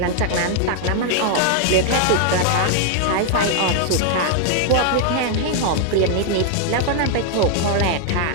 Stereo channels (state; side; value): different; both; correlation 0.00